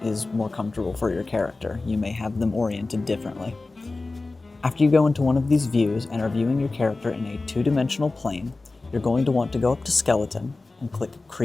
is more comfortable for your character. You may have them oriented differently. After you go into one of these views and are viewing your character in a 2-dimensional plane, you're going to want to go up to Skeleton and click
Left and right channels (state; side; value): quieter; right; 3.4 dB